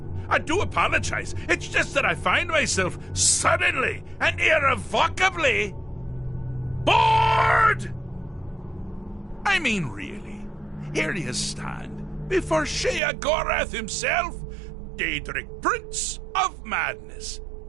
I do apologize. It's just that I find myself suddenly and irrevocably bored! I mean, really. Here you stand before Sheogorath himself, Daedric Prince of Madness,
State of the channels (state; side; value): drops out; left; at 13.0 s